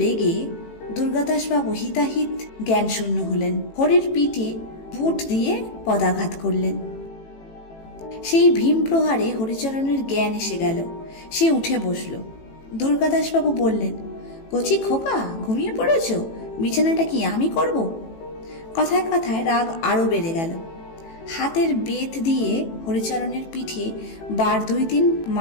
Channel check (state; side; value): late; right; 18 ms